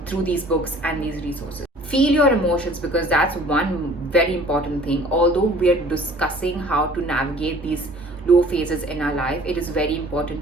through these books and these resources. Feel your emotions, because that's one very important thing. Although we are discussing how to navigate these low phases in our life, it is very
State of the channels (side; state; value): both; normal; correlation 0.50